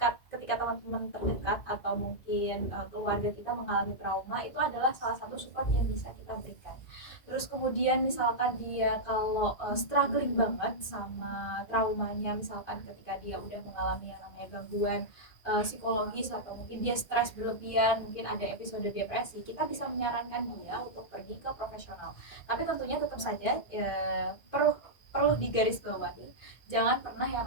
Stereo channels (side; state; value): right; late; 1.9 ms